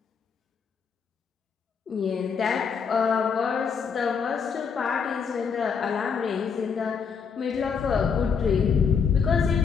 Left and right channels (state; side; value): quieter; right; 6.2 dB